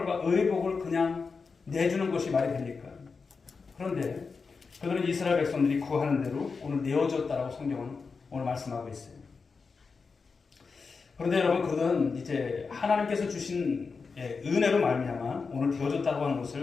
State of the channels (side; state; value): right; quieter; 4.9 dB